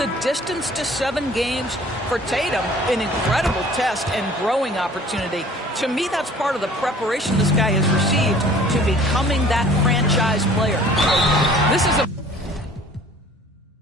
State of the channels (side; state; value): both; normal; correlation 0.50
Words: distance to 7 games for Tatum, an incredible test and growing opportunity. To me, that's part of the preparation this guy has received to becoming that franchise player. This is a